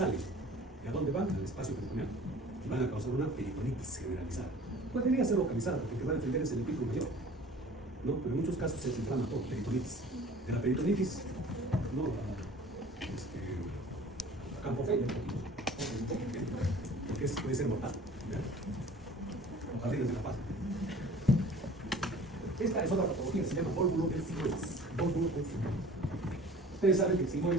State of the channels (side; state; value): both; normal; correlation 0.46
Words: ¿Y a dónde van? Al espacio peritoneal. Y van a causar una peritonitis generalizada. Podría ser localizada porque el que va a defender es el epítelis mayor. ¿No? Pero en muchos casos se inflama todo, peritonitis. De la peritonitis, no, campofelia, porque puede ser mortal. O jardines de la paz. Esta es otra patología, se llama vólvulo del sigmoides. Vólvulo del sigmoides. Ustedes saben que el